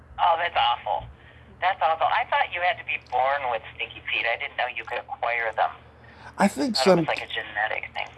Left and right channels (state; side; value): identical; both; correlation 1.00